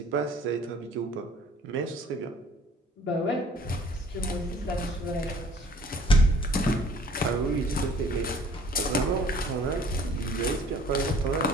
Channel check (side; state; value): both; normal; correlation 0.54